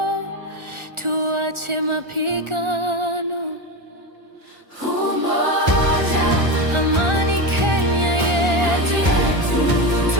tuache mapigano. Umoja, amani Kenya yetu,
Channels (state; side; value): late; left; 1.4 ms